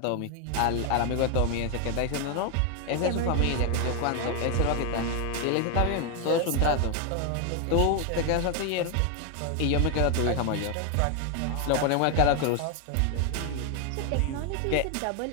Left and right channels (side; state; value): both; different; correlation 0.01